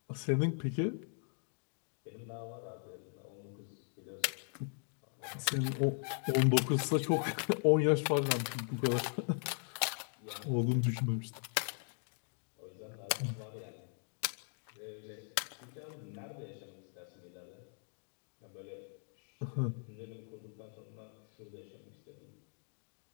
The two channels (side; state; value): right; silent; 52 dB below the other